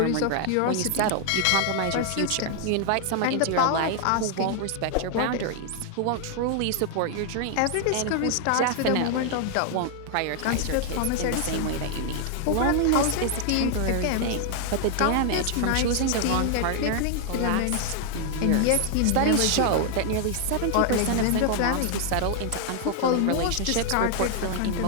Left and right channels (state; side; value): different; both; correlation 0.00